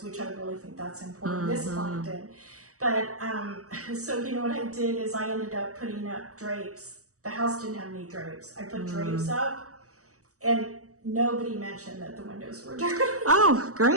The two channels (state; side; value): late; left; 0.65 ms